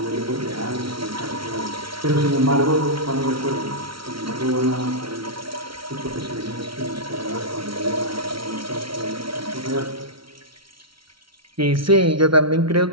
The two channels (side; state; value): left; late; 0.74 ms